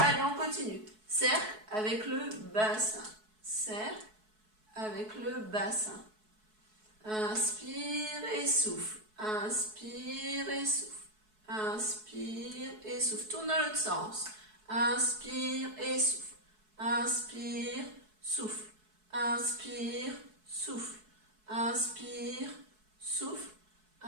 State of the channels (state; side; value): late; left; 4.7 ms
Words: on continue. Cercle avec le bassin. Cercle avec le bassin. Inspire et souffle. Inspire et souffle. Inspire et souffle. Tourne dans l'autre sens. Inspire et souffle. Inspire, souffle. Inspire, souffle. Inspire, souffle.